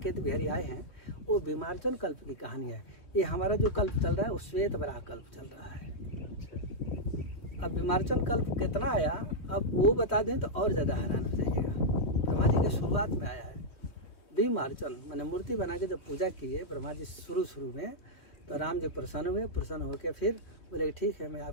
बिहारी आए हैं वो बीमारचन कल्प की कहानी है। ये हमारा जो कल्प चल रहा है वो श्वेत वराह कल्प चल रहा है। अब बीमारचन कल्प कितना आया अब वो बता दें तो और ज्यादा हैरान हो जाइएगा। ब्रह्मा जी के शुरुआत में आया है बीमारचन, मैंने मूर्ति बना के जब पूजा की है ब्रह्मा जी शुरू में, तो राम जी प्रसन्न हुए, प्रसन्न होकर फिर बोले ठीक है मैं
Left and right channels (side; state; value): right; late; 3.2 ms